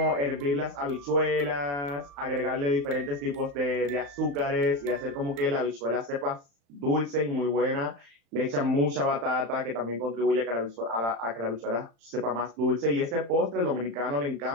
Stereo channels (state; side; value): late; left; 35 ms